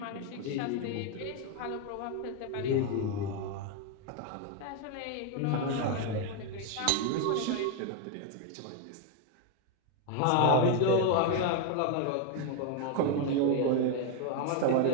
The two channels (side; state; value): both; different; correlation 0.01